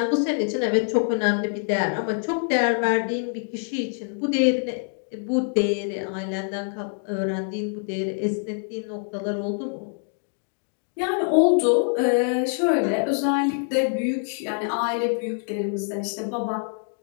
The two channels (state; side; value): silent; right; 59 dB below the other